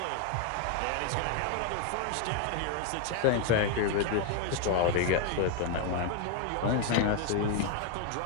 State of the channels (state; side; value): different; both; correlation 0.01